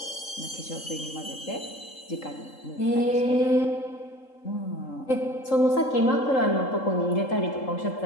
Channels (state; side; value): late; right; 3.7 ms